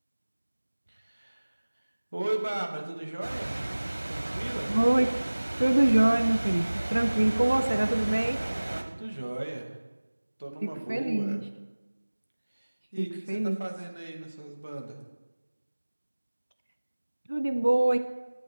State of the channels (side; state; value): both; inverted; correlation -1.00